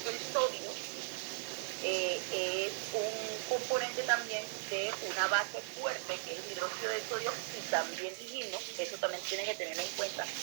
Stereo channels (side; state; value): left; silent; 53 dB below the other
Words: que el sodio es un componente también de una base fuerte, que es el hidróxido de sodio, y también dijimos, eso también tienen que tener en cuenta,